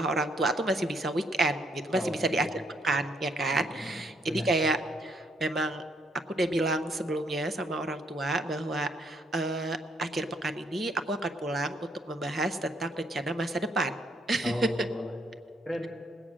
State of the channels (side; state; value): both; normal; correlation 0.71